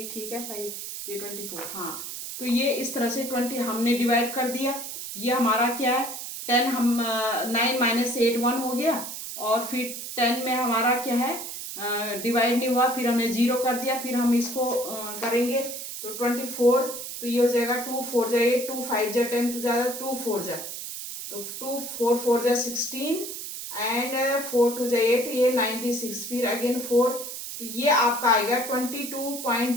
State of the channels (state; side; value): noise; right; hiss, 8 dB below the sound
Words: ठीक है 5 ये 24। हाँ, तो ये इस तरह से 20 हमने डिवाइड कर दिया। ये हमारा क्या है 10, हम 9 माइनस 8 1 हो गया, और फिर 10 में हमारा क्या है डिवाइड नहीं हुआ, फिर हमने 0 कर दिया, फिर हम इसको करेंगे तो 24, तो ये हो जाएगा 2 4 जा 8, 2 5 जा 10, तो ज़्यादा 2 4 जा, तो 2 4 4 जा 16 एंड 4 2 जा 8, ये 96, फिर अगेन 4, तो ये आपका आएगा